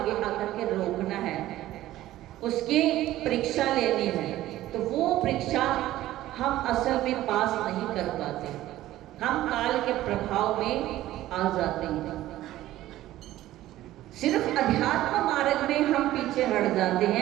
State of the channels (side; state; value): left; quieter; 14.8 dB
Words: आकर के रोकना है, उसकी परीक्षा लेनी है। तो वो परीक्षा हम असल में पास नहीं कर पाते, हम काल के प्रभाव में आ जाते हैं। सिर्फ अध्यात्म मार्ग में हम पीछे हट जाते